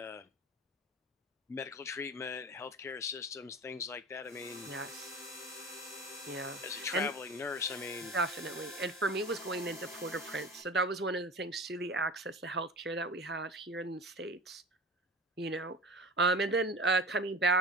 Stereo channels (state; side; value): normal; both; correlation 0.34